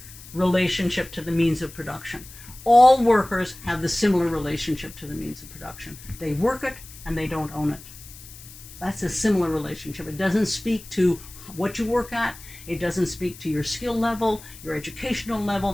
relationship to the means of production. All workers have the similar relationship to the means of production. They work it and they don't own it. That's a similar relationship. It doesn't speak to what you work at. It doesn't speak to your skill level, your educational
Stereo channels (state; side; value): noise; left; hiss, 18 dB below the sound